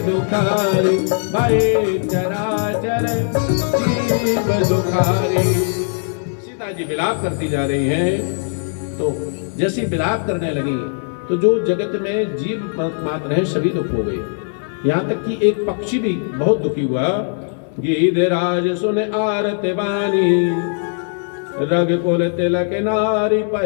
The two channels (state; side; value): silent; right; digital silence